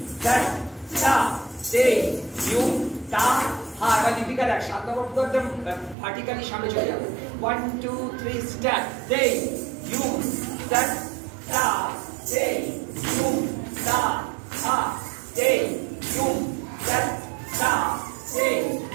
that ta te yum ta ha এবার দীপিকা দেখ 7 নম্বর পুরো একদম vertically সামনে চলে যাবে 1 2 3 start te yum that ta te yum ta ha te yum that ta te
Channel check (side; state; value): left; drops out; at 6.0 s